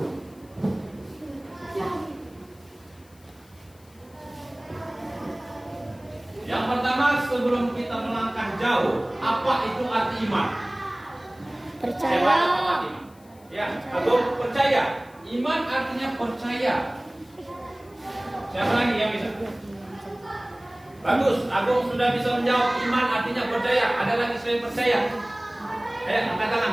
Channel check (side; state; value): left; noise; hiss, 29 dB below the sound